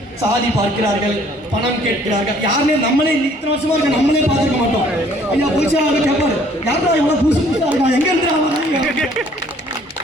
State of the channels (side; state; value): both; normal; correlation 0.59